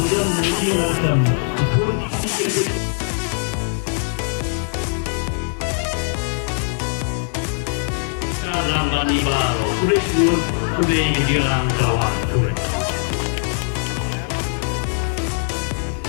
menjelaskan dalam dan ibaro kurikulum khublei dilarang kawan khublei.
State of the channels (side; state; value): right; silent; 57 dB below the other